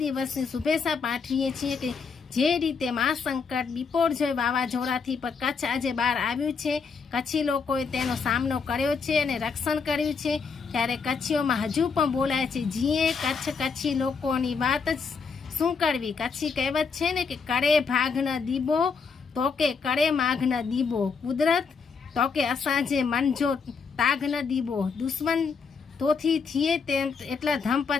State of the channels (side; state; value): right; quieter; 5.3 dB